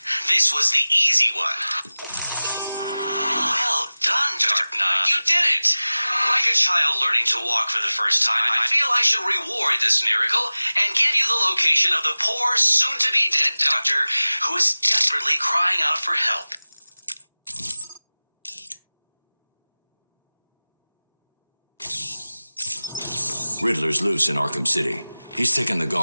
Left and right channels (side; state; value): both; inverted; correlation -0.98